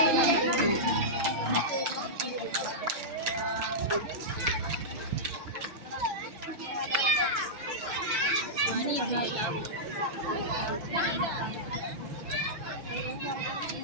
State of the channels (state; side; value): late; left; 6.3 ms